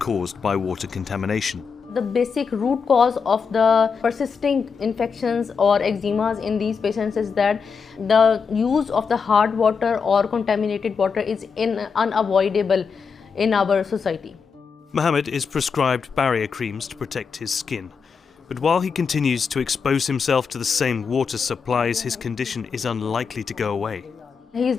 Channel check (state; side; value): quieter; right; 5.8 dB